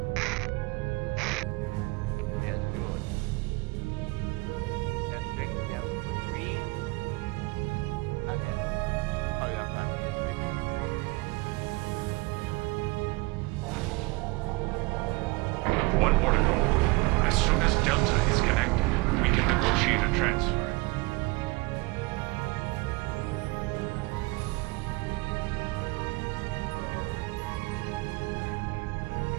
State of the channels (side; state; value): left; quieter; 24.9 dB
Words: Yes, good. Let's drink some green. And then hurry up and finish with me. One more to go. As soon as Delta is connected, we can negotiate a transfer.